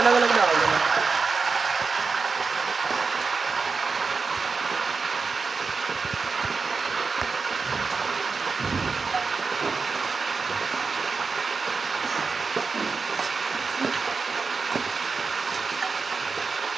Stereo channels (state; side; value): quieter; left; 4.7 dB